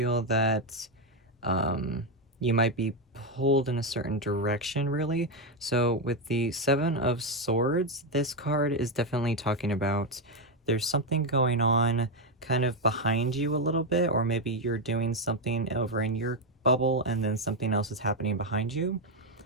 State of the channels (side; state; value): both; normal; correlation 0.06